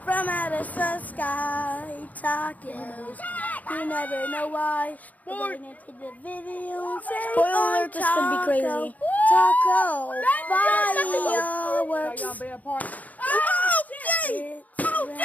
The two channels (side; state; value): right; late; 0.077 ms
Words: from out of the sky. Tacos. You never know why. We're going into the video and say, spoiler alert, this could be crazy. Taco. Fireworks. Oh, dang! Oh,